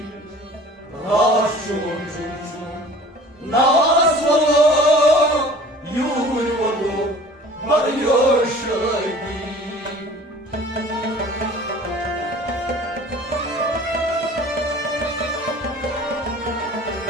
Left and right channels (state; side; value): normal; both; correlation 0.46